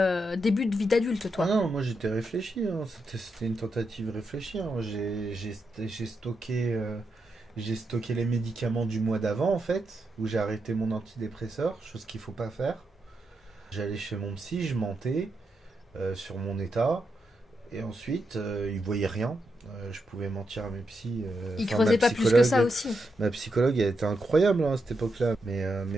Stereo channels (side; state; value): both; normal; correlation 0.84